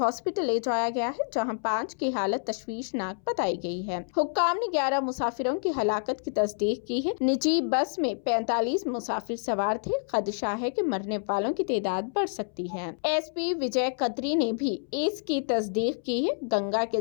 ले जाया गया है, जहाँ 5 की हालत तशवीशनाक बताई गई है। हुक्काम ने 11 मुसाफिरों की हलाकत की तस्दीक की है। निजी बस में 45 मुसाफिर सवार थे। खदशा है कि मरने वालों की तादाद बढ़ सकती है। एसपी विजय कतरी ने भी इसकी तस्दीक की है। गंगा के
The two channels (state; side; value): silent; right; 59 dB below the other